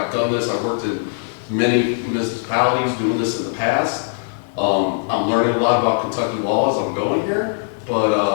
done this, I've worked in many municipalities doing this in the past. I'm learning a lot about Kentucky law as I'm going here, but,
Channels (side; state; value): right; silent; 66 dB below the other